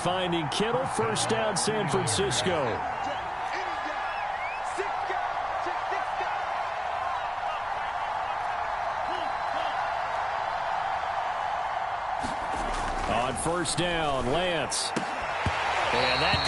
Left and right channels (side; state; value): both; identical; correlation 1.00